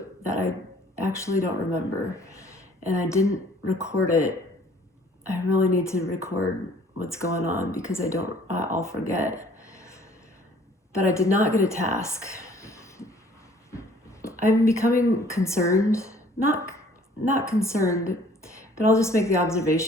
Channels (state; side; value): normal; both; correlation 0.55